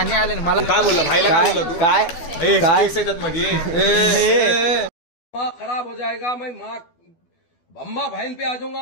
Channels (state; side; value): late; right; 12 ms